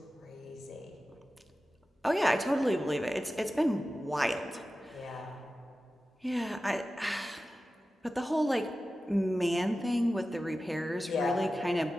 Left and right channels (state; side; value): normal; both; correlation 0.94